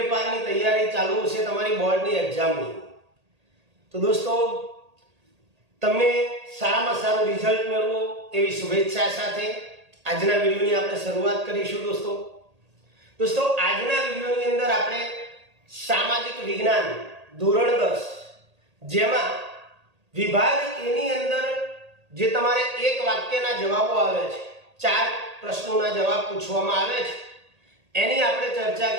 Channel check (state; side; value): late; left; 1.8 ms